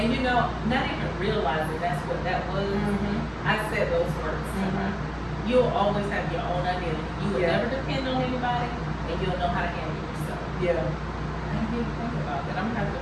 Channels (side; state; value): both; identical; correlation 1.00